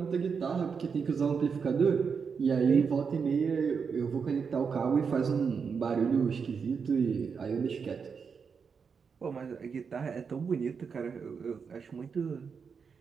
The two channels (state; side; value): quieter; left; 5.9 dB